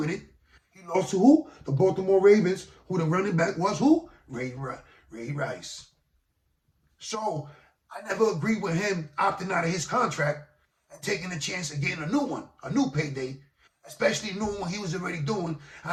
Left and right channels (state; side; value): identical; both; correlation 1.00